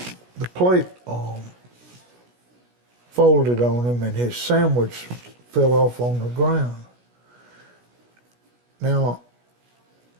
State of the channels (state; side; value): late; left; 16 ms